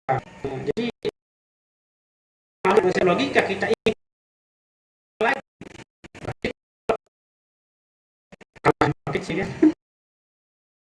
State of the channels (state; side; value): identical; both; correlation 1.00